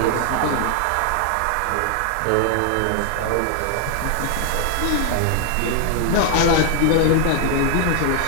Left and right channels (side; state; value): both; different; correlation 0.00